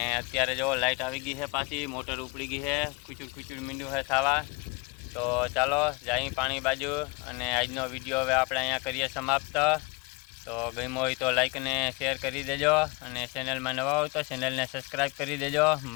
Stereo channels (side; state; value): right; quieter; 27.3 dB